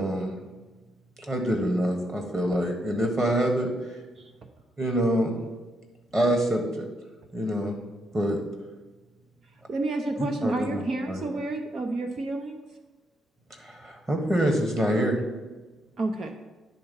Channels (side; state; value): both; normal; correlation 0.78